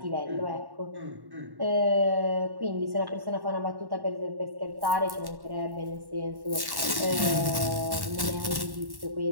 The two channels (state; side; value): late; left; 1.1 ms